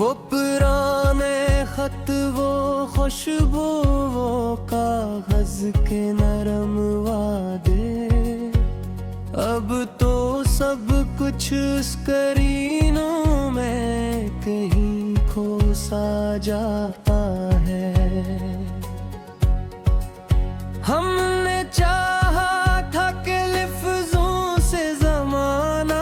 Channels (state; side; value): identical; both; correlation 1.00